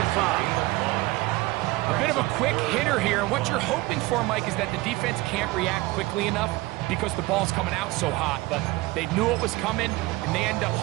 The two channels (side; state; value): left; quieter; 20.5 dB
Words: 5. A bit of a quick hitter here, and what you're hoping for, Mike, is that the defense can't react quickly enough because the ball's coming out so hot, but they knew it was coming, and they end up